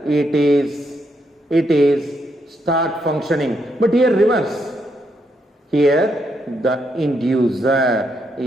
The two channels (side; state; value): both; normal; correlation 0.78